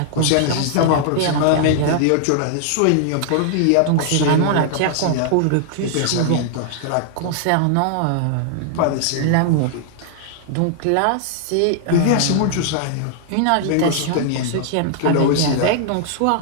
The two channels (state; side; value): different; both; correlation -0.01